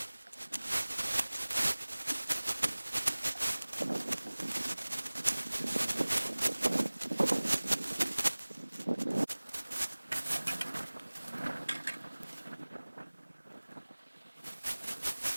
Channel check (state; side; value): inverted; both; correlation -1.00